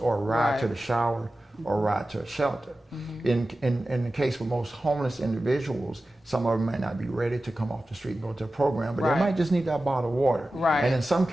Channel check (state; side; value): normal; both; correlation 0.94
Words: a ride to Right. the shower, or a ride to a shelter. In the case of most homeless individuals, some of them may not be ready to come off the street and go to a program, but Right. they might just need that bottle of water. Right. And in some